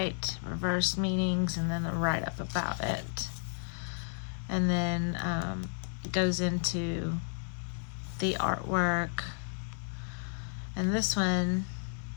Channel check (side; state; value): right; silent; 56 dB below the other